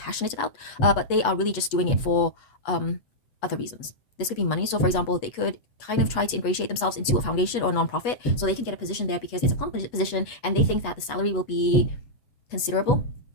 about, but they are really just doing it for other reasons. This could be money. So for example, they could kind of try to ingratiate themselves into a foundation or a non-profit, so they can get a position there because it's a plum position, and they think that the salary will be considerable.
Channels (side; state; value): right; late; 8.2 ms